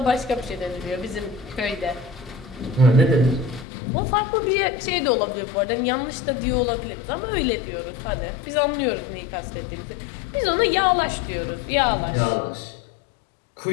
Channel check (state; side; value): drops out; right; at 3.7 s